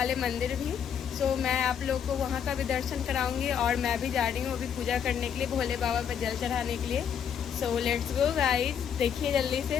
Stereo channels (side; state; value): right; quieter; 8.2 dB